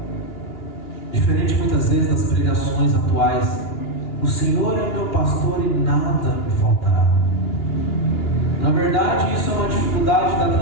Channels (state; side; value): late; right; 2.9 ms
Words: Diferente muitas vezes das pregações atuais, o Senhor é meu pastor e nada me faltará. Na verdade, isso é uma dificuldade da